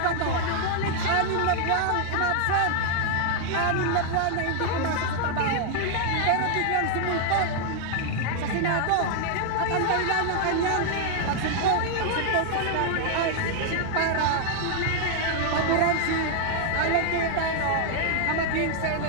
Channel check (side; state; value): both; different; correlation 0.00